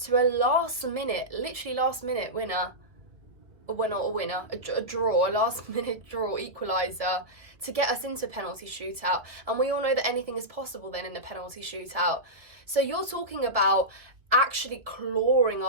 a literally last minute winner, a draw, a last minute draw equaliser to get us into penalty shootout. And we all know that anything is possible then in a penalty shootout. So you're talking about actually clawing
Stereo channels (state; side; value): late; left; 2.0 ms